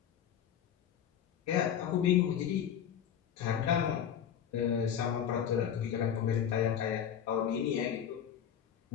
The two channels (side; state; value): right; quieter; 9.0 dB